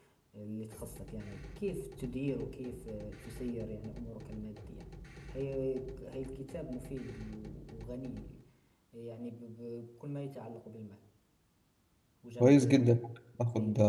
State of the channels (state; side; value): identical; both; correlation 1.00